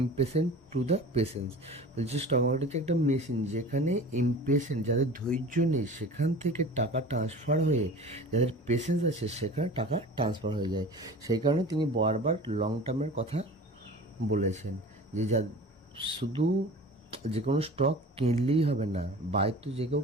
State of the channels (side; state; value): both; normal; correlation 0.39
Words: to the patience. বলছে স্টক মার্কেট হচ্ছে একটা মেশিন, যেখানে ইমপেশেন্ট, যাদের ধৈর্য নেই, সেখান থেকে টাকা ট্রান্সফার হয়ে যাদের পেশেন্স আছে সেখানে টাকা ট্রান্সফার হয়ে যায়। সেই কারণে তিনি বারবার লং টার্মের কথা বলেছেন, যে শুধু যে কোনো স্টক কিনলেই হবে না, বাই তো যে কেউ